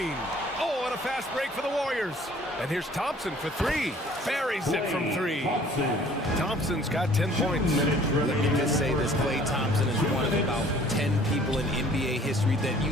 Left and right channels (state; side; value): normal; both; correlation 0.54